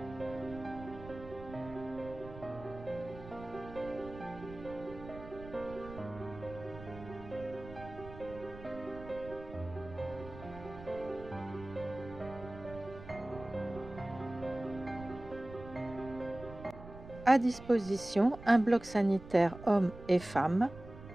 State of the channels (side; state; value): right; noise; rumble, 15 dB below the sound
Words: À disposition, un bloc sanitaire hommes et femmes,